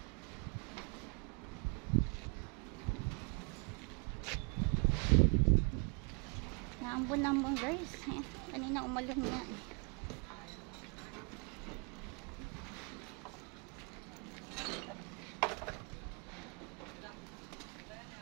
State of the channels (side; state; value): left; quieter; 36.3 dB